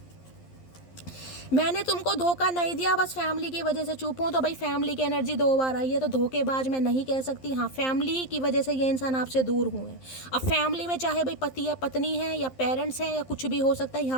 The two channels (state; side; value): late; right; 11 ms